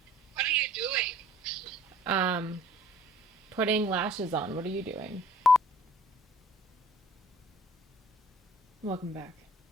What are you doing? Putting lashes on. What are you doing? Welcome back.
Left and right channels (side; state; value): both; normal; correlation 0.55